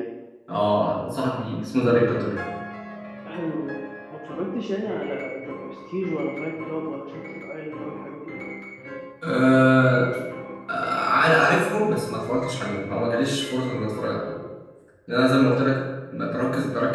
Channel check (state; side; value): identical; both; correlation 1.00